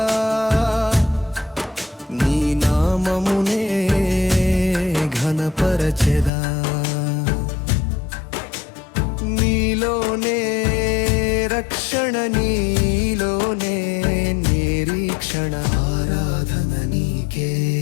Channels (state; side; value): drops out; right; at 6.3 s